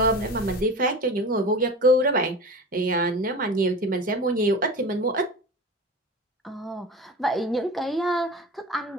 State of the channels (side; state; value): both; normal; correlation 0.32